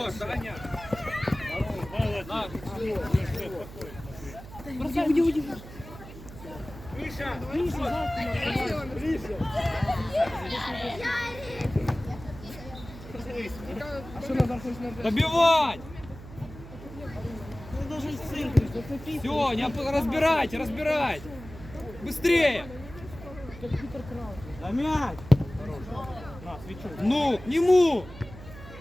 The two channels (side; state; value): right; noise; hum, 15 dB below the sound